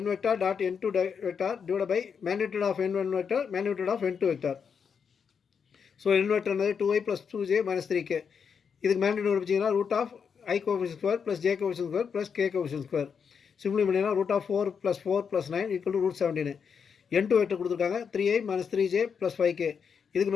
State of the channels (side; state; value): right; quieter; 6.5 dB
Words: n vector dot n2 vector divided by magnitude of n1 vector magnitude of n2 vector. So n vector என்னது 2i plus 2j minus 3k. இதுக்கு magnitude வச்சிங்கன்னா root of i coefficient square plus j coefficient square plus k coefficient square. Simply பண்ணிங்கன்னா root of 4 + 4 + 9 equal to root 17. n2 vector கொடுத்துருக்காங்க 3i minus 3j plus 5k. இதுக்கு